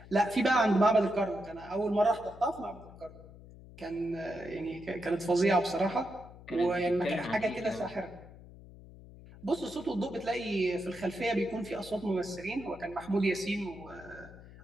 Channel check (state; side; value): noise; left; hum, 18 dB below the sound